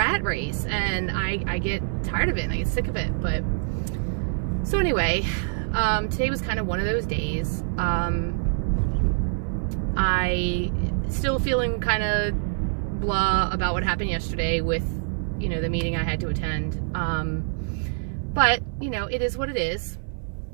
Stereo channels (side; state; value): left; silent; 61 dB below the other